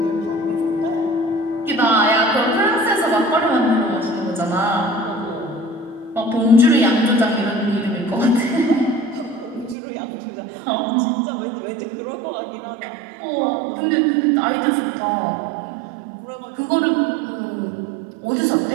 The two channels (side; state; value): left; drops out; at 9.8 s